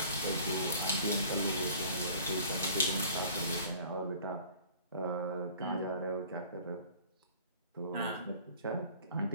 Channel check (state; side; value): inverted; both; correlation -0.48